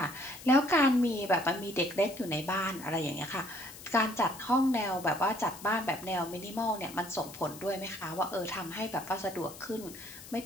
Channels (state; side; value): noise; left; hiss, 16 dB below the sound